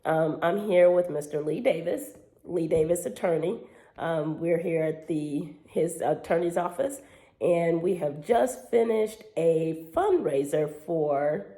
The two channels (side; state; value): both; identical; correlation 1.00